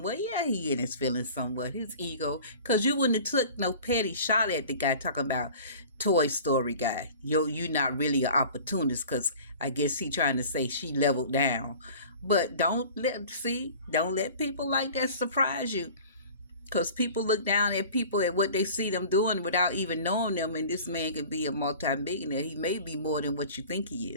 Yeah, he in his feelings somewhat. His ego. Because you wouldn't have took no petty shot at the guy talking about Toy Story guy. You not really an opportunist because I guess he trying to say she leveled down. But don't let people like that surprise you. Because people look down at people at what they see them doing without even knowing them. And this man could be a multi-millionaire. He may be more than what you think he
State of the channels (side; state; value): both; inverted; correlation -0.42